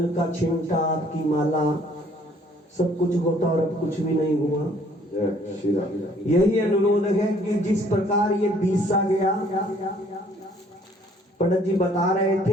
का छिमटा, आपकी माला, सब कुछ होता और अब कुछ भी नहीं हुआ। यही अनुरोध है कि जिस प्रकार ये बीसा गया, पंडित जी बता रहे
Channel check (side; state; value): both; normal; correlation 0.60